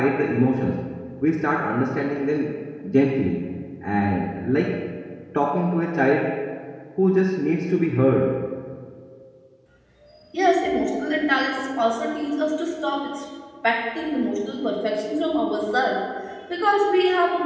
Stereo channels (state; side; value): identical; both; correlation 1.00